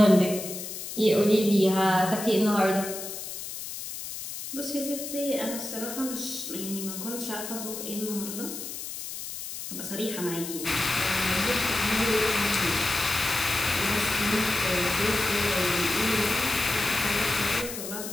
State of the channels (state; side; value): noise; left; hiss, 8 dB below the sound